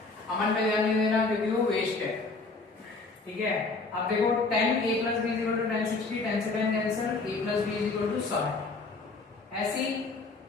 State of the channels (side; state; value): right; quieter; 3.8 dB